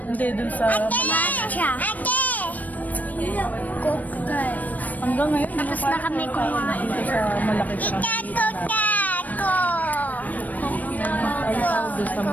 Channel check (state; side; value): late; right; 0.078 ms